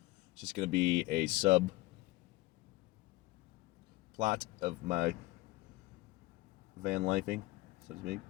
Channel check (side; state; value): right; quieter; 20.1 dB